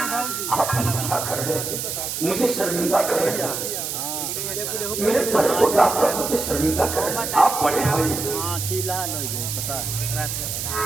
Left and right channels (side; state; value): right; noise; hiss, 4 dB below the sound